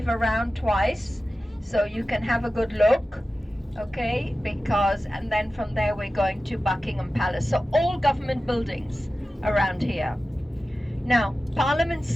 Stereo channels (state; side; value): normal; both; correlation 0.95